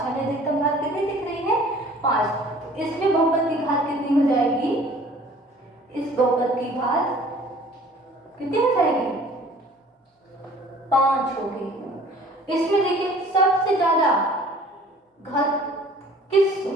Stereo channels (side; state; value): both; normal; correlation 0.50